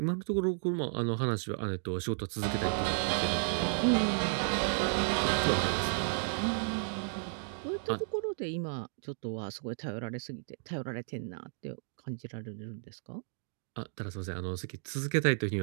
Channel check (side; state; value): left; silent; digital silence